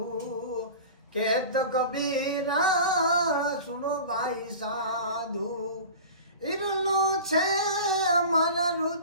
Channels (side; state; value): both; inverted; correlation -0.36